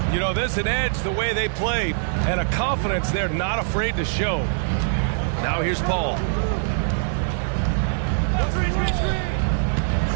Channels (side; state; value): left; silent; digital silence